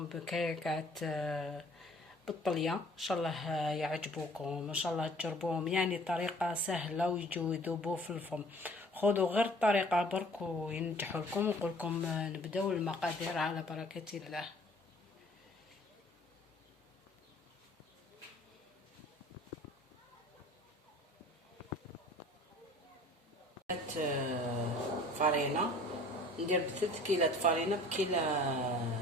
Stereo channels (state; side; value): normal; both; correlation 0.51